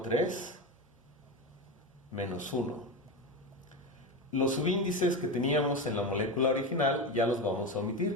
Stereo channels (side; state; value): both; normal; correlation 0.19